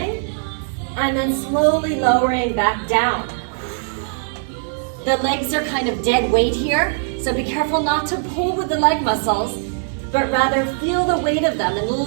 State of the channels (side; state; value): left; silent; digital silence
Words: and then slowly lowering back down. The legs are kind of dead weight here, so be careful not to pull with the leg muscles, but rather feel the weight of them and